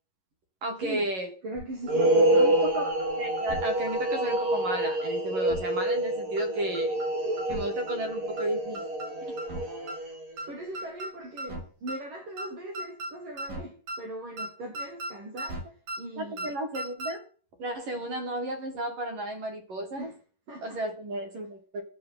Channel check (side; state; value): left; late; 11 ms